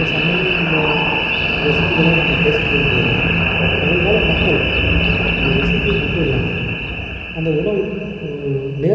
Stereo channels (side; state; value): both; identical; correlation 1.00